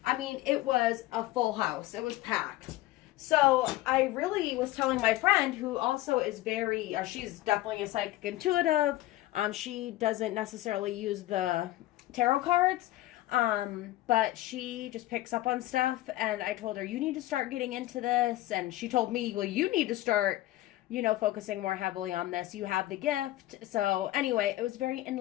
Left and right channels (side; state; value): right; quieter; 16.5 dB